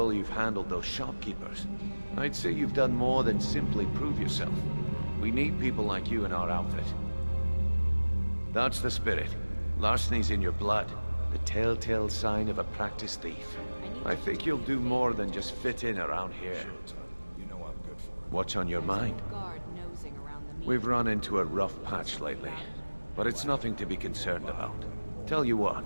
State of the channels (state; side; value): inverted; both; correlation -1.00